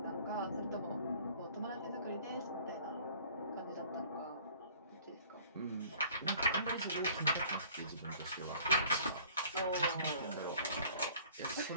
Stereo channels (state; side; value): inverted; both; correlation -0.52